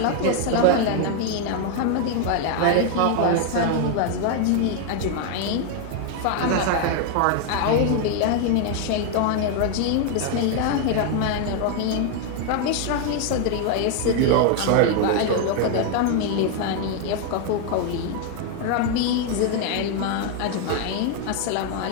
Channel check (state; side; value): different; both; correlation 0.00